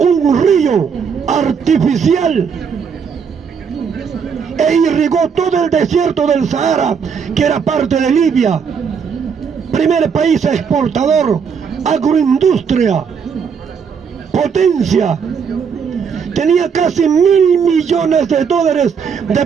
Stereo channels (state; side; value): quieter; left; 6.5 dB